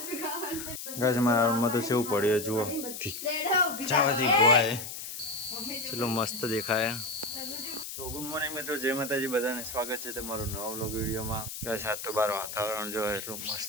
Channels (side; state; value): left; noise; hiss, 8 dB below the sound